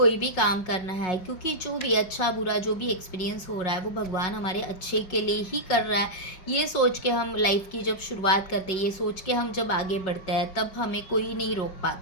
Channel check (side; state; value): right; late; 5.4 ms